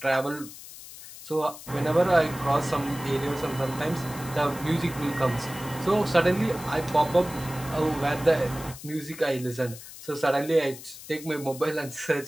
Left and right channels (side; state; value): left; noise; hiss, 15 dB below the sound